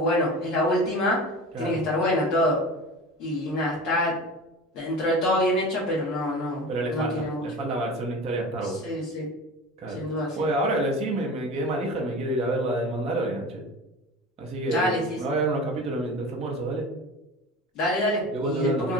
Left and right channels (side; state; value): both; normal; correlation 0.34